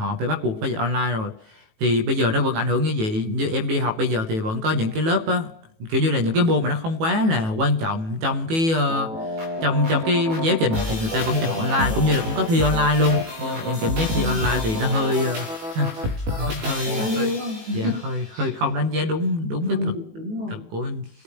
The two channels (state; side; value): late; left; 18 ms